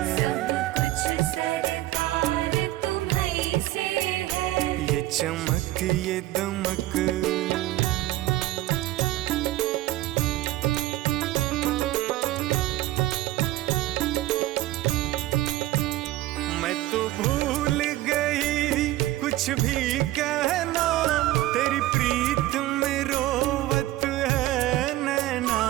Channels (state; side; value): quieter; left; 16.1 dB